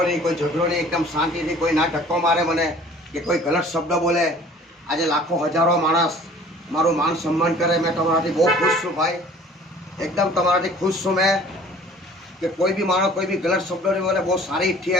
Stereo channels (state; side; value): normal; both; correlation 0.50